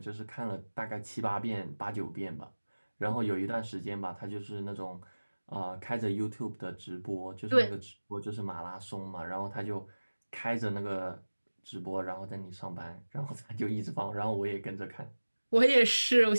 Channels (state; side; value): inverted; both; correlation -1.00